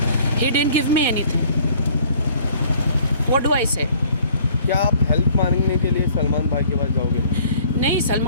He didn't give me anything. What do I से? क्या आप हेल्प मांगने के लिए सलमान भाई के पास जाओगे? नहीं,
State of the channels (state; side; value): inverted; both; correlation -0.56